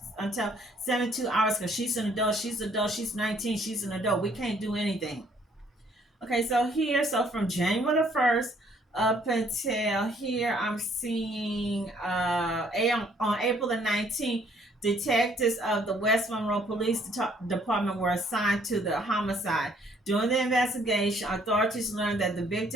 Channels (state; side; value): normal; both; correlation 0.64